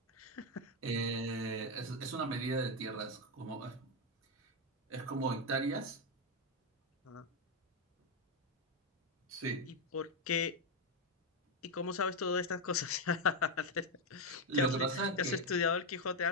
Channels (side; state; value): both; normal; correlation 0.05